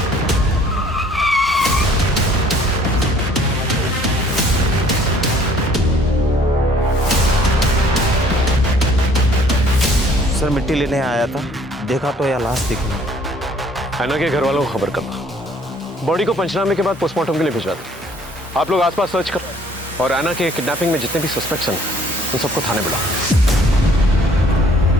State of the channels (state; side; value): normal; both; correlation 0.58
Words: सर मिट्टी लेने आया था, देखा तो यह लाश दिखी नहीं। ऐना के घर वालों को खबर करना, बॉडी को पंचनामे के बाद पोस्टमार्टम के लिए भिजवा दो। आप लोग आसपास सर्च करो और ऐना के किडनैपिंग में जितने भी सस्पेक्ट्स हैं उन सबको थाने बुलाओ।